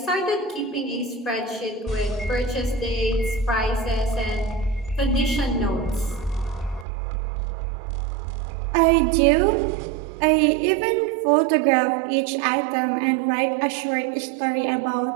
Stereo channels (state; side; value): drops out; left; at 6.9 s